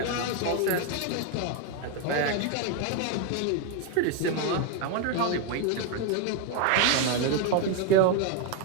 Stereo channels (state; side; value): different; both; correlation 0.01